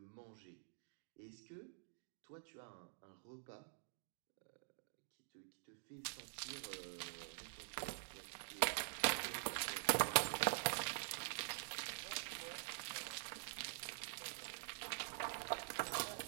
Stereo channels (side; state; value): left; silent; digital silence